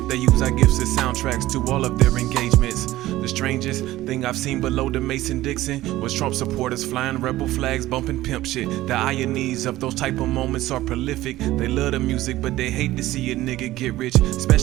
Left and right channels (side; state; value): left; quieter; 16.1 dB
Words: they use our gifts as soundtracks to all of their engagements. The strangest thing I've seen below the Mason-Dixon was Trump supporters flying rebel flags, bumping pimp shit. The ironies of those type of moments are prolific. They love the music, but they hate to see a nigga get rich,